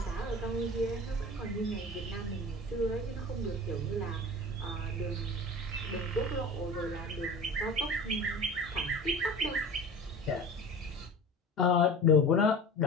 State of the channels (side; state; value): both; normal; correlation 0.36